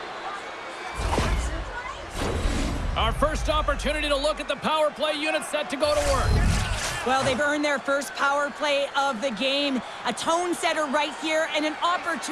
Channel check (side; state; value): both; identical; correlation 1.00